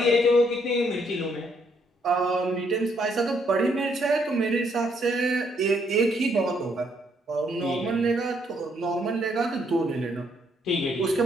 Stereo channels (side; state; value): both; normal; correlation 0.71